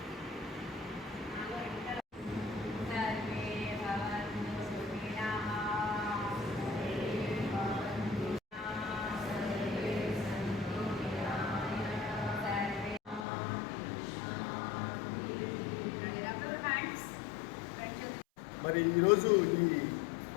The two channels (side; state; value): right; drops out; at 13.2 s